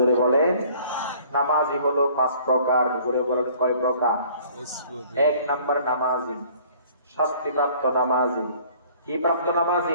বলেন। নামাজি হলো 5 প্রকার। জোরে বলেন কয় প্রকার? 1 নাম্বার নামাজি শাস্তিপ্রাপ্ত নামাজি। কি প্রাপ্ত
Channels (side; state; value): both; inverted; correlation -0.54